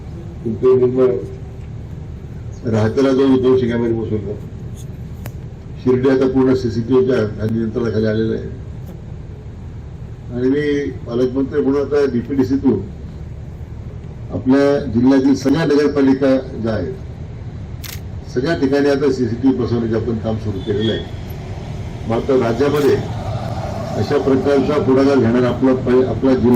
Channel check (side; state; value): both; identical; correlation 1.00